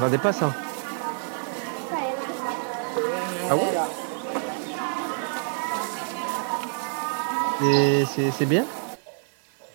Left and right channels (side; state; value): left; silent; 60 dB below the other